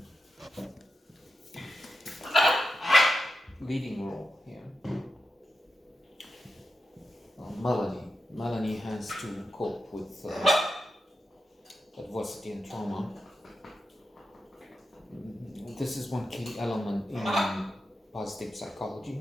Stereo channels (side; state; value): both; normal; correlation 0.89